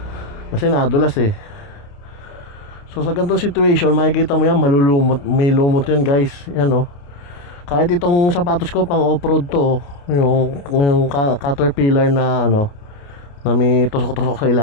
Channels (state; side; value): late; right; 28 ms